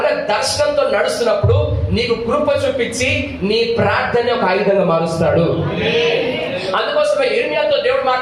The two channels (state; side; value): noise; right; hum, 30 dB below the sound